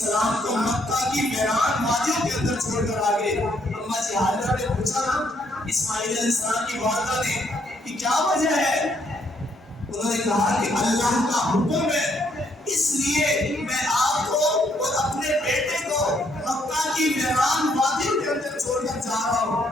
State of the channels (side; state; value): both; normal; correlation 0.71